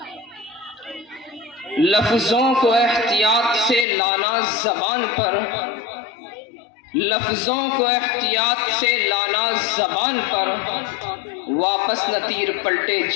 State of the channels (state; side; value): drops out; right; at 3.9 s